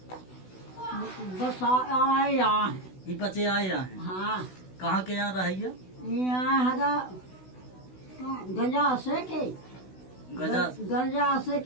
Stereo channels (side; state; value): right; late; 16 ms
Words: बसा आए यहाँ। ये पचे आए यहाँ हैं। हाँ। कहाँ के यहाँ रहिए? यहाँ हरा गजा से के गजा से